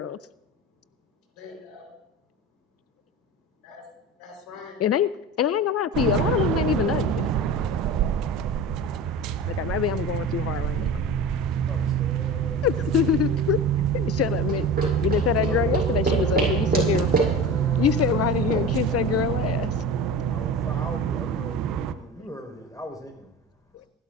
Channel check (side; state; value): both; normal; correlation 0.32